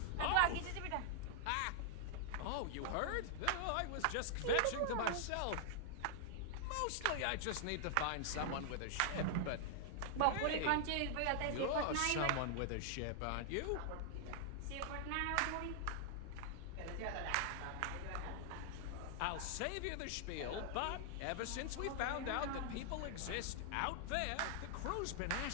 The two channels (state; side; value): different; both; correlation -0.01